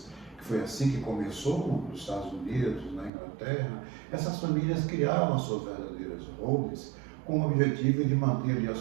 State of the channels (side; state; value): left; drops out; at 3.1 s